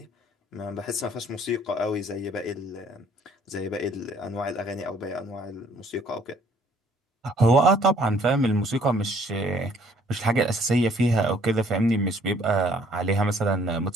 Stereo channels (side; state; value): both; normal; correlation 0.60